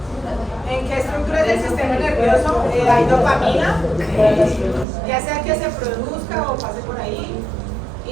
¿En qué estructuras del sistema nervioso hay dopamina? Ya sea que se produzca o pase por ahí.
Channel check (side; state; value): left; drops out; at 4.9 s